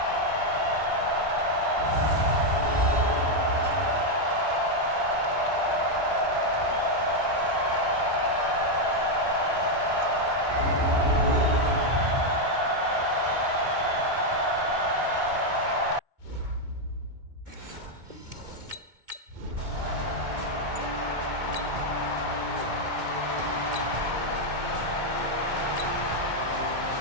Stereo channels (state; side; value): late; left; 2.2 ms